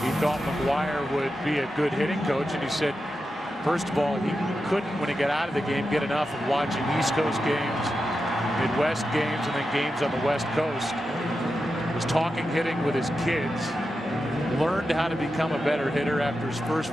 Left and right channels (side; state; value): both; normal; correlation 0.89